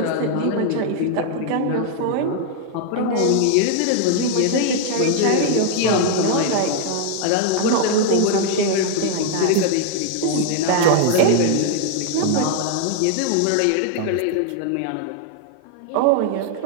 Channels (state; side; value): different; both; correlation 0.00